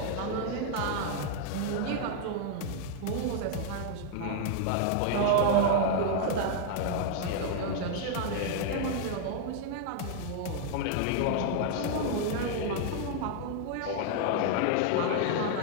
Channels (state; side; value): different; both; correlation 0.00